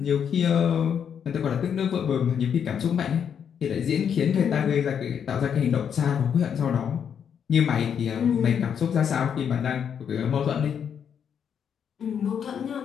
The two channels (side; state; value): right; quieter; 7.9 dB